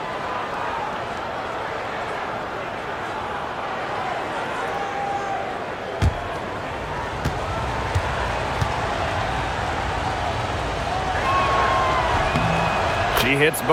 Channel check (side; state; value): both; identical; correlation 1.00